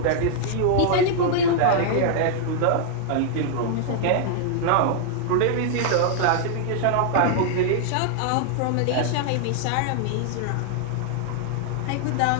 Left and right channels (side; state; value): both; different; correlation -0.01